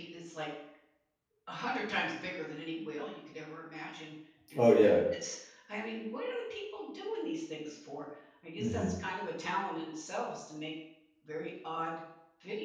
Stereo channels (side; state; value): both; identical; correlation 1.00